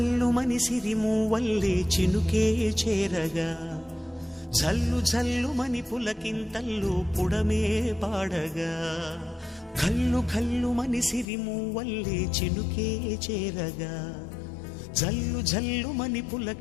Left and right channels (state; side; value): drops out; right; at 11.2 s